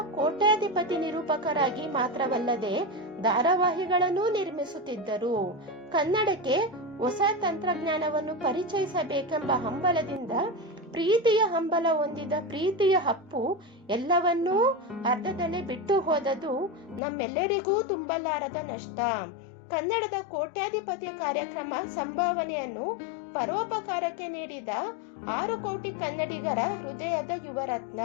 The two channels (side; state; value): right; drops out; at 17.0 s